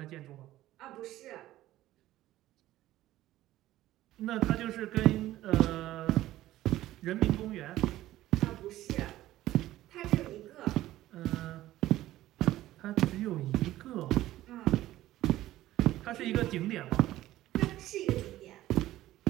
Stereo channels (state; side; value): quieter; left; 15.0 dB